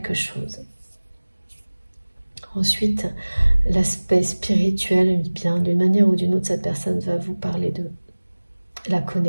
chose. Ensuite, l'aspect spirituel, bien d'une manière ou d'une autre, cette personne va vous parler de la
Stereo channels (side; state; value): both; inverted; correlation -1.00